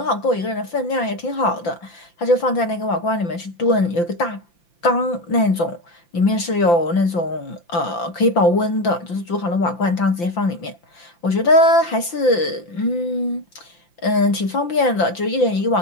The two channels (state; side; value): late; right; 5.8 ms